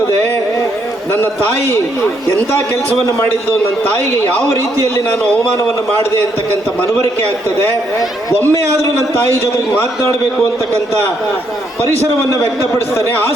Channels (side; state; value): both; normal; correlation 0.74